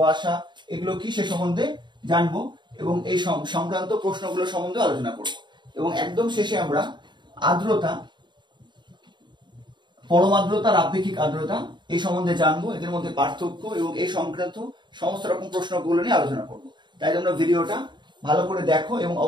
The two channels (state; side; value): late; left; 0.22 ms